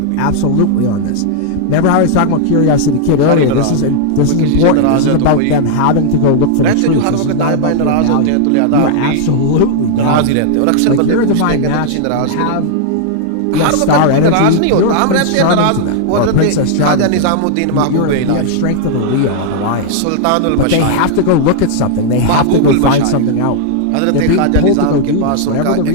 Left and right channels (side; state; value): both; different; correlation -0.01